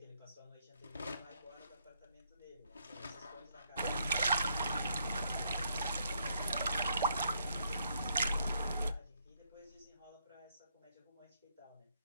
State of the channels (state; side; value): inverted; both; correlation -0.73